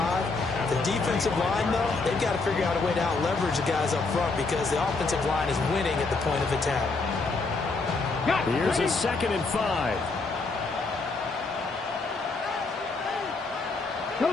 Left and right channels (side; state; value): right; quieter; 3.8 dB